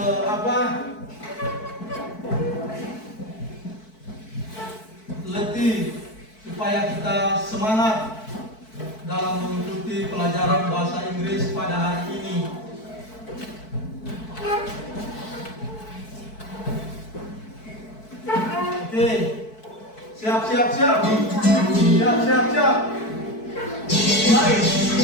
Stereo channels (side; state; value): right; late; 4.6 ms